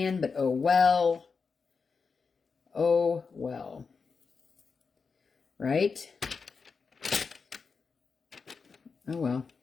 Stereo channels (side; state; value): right; quieter; 5.1 dB